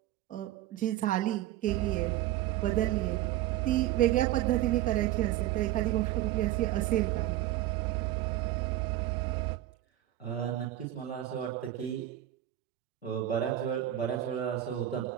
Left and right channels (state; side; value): quieter; left; 13.8 dB